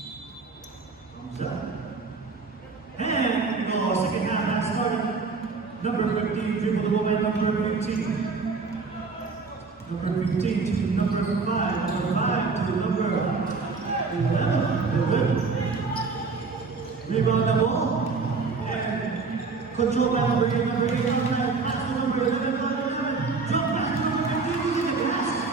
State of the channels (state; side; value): quieter; left; 4.5 dB